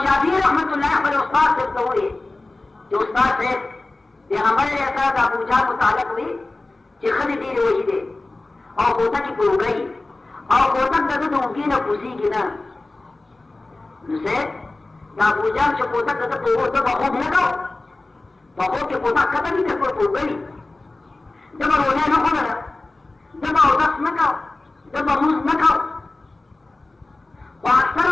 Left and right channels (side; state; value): right; quieter; 3.1 dB